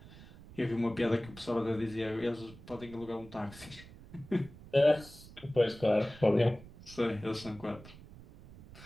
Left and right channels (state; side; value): noise; right; rumble, 18 dB below the sound